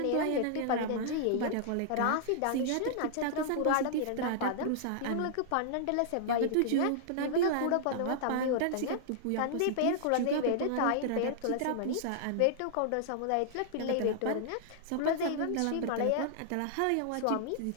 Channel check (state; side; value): different; both; correlation -0.01